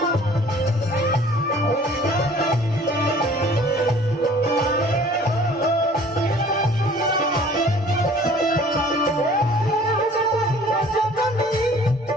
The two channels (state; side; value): normal; both; correlation 0.52